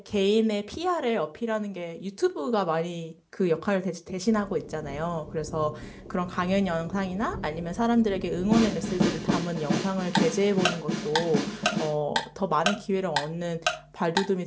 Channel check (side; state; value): both; identical; correlation 1.00